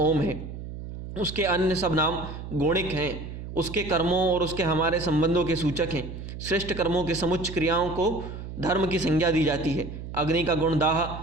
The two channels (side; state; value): right; noise; hum, 10 dB below the sound